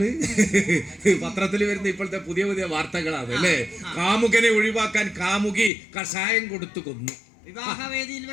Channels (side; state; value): right; drops out; at 5.7 s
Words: പത്രത്തിൽ വരുന്ന ഇപ്പോഴത്തെ പുതിയ പുതിയ വാർത്തകളാണ് അല്ലേ? കാമുകനെ ഒഴിവാക്കാൻ കാമുകി കഷായം കൊടുത്തു കൊന്നു. വിവാഹവേദിയിൽ